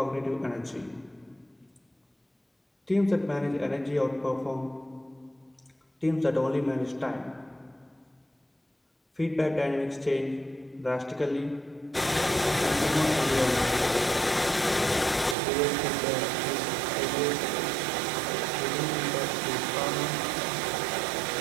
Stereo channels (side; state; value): left; drops out; at 15.4 s